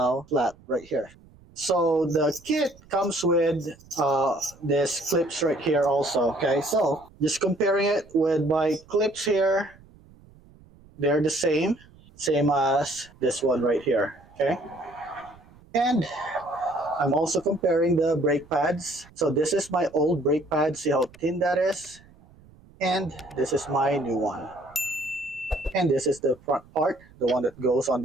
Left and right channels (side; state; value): right; noise; rumble, 25 dB below the sound